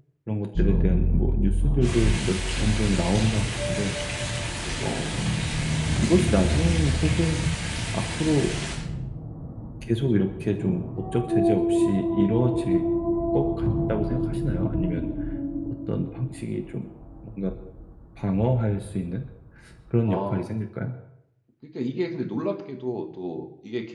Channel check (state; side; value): identical; both; correlation 1.00